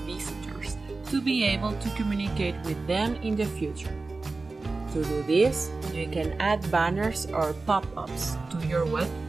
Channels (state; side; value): quieter; left; 3.7 dB